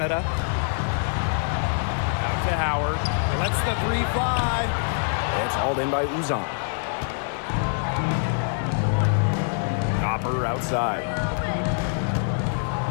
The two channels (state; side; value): silent; right; digital silence